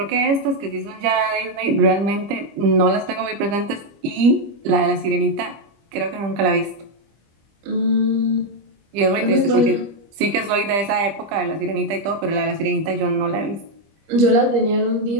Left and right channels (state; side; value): late; left; 25 ms